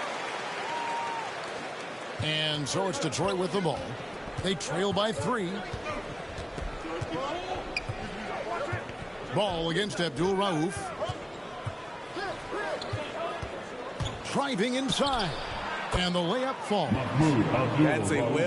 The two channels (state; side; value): identical; both; correlation 1.00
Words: And so it's Detroit with the ball. They trail by 3. Ball against Abdul Rauf. Driving inside. And the layup falls. That's a